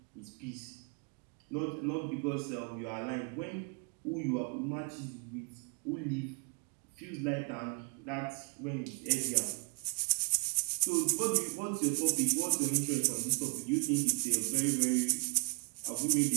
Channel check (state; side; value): quieter; left; 37.0 dB